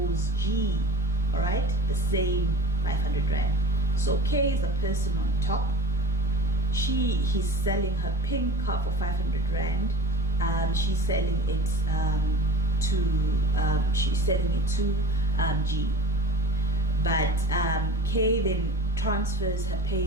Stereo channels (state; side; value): normal; both; correlation 0.38